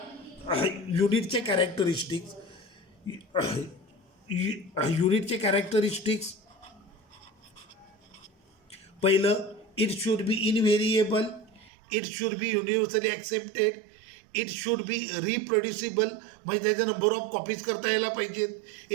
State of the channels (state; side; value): drops out; left; at 11.7 s